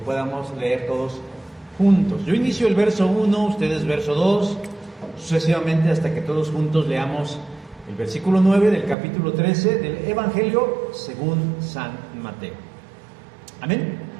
leer todos juntos. Yo inicio el verso 1, ustedes verso 2, sucesivamente hasta que todos juntos leamos el versículo 9 del capítulo 13 del Evangelio según San Mateo. Amén.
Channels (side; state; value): left; drops out; at 9.0 s